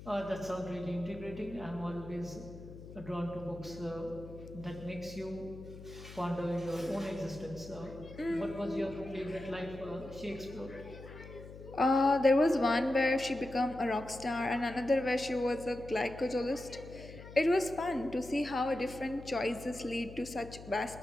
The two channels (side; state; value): left; noise; hum, 15 dB below the sound